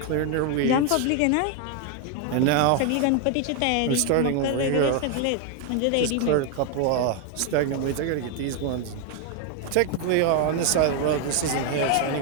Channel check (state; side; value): different; both; correlation 0.01